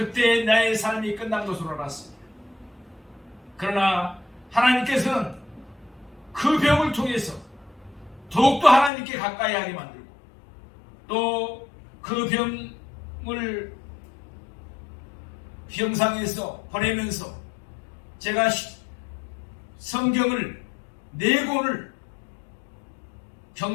나의 삶이 끝난 것으로 알았습니다. 그러나 하나님께서는 그 병을 통해서 더욱더 하나님께 가까이 하게 만들고 또 그 병을 병상에서 보내면서 제가 성경을 4권을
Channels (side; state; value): right; drops out; at 8.9 s